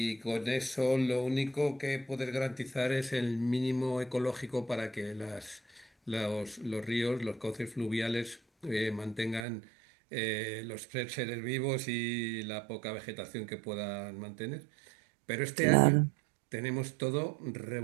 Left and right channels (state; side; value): drops out; left; at 9.5 s